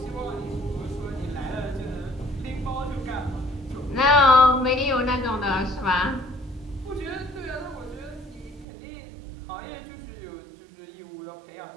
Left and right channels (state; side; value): drops out; left; at 8.7 s